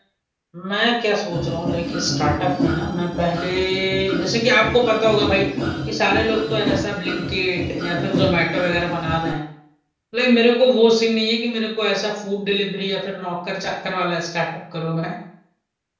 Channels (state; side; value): identical; both; correlation 1.00